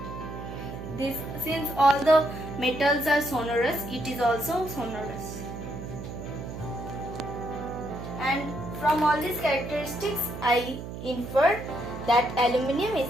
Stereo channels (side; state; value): right; noise; hum, 9 dB below the sound